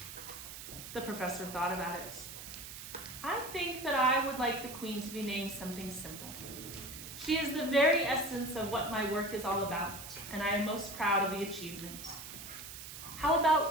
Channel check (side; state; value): right; noise; hiss, 11 dB below the sound